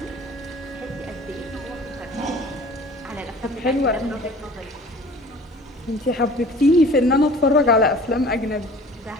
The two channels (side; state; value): both; normal; correlation 0.46